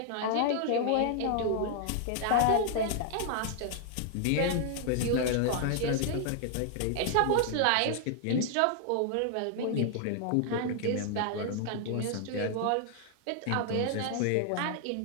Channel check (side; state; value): both; different; correlation 0.00